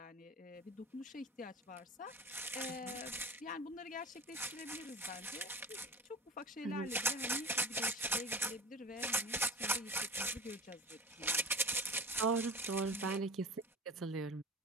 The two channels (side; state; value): both; normal; correlation 0.33